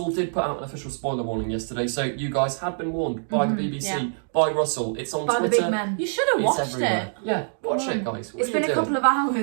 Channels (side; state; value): left; silent; digital silence